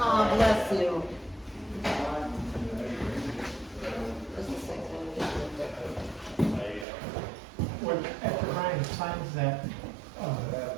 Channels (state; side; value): drops out; left; at 6.9 s